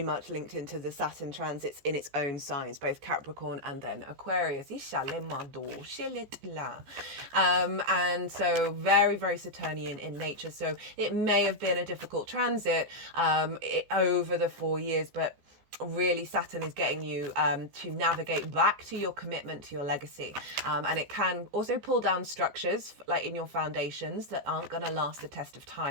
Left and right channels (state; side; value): late; left; 15 ms